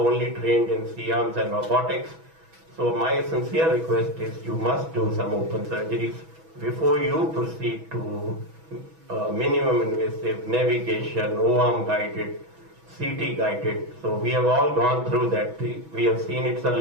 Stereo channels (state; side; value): late; left; 6.1 ms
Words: trained in C-arms and robotics. So my sincere request is you must do some open surgeries before you proceed to minimum invasive navigation, O-arm guided, CT guided. So we have all gone through that. We have seen it's a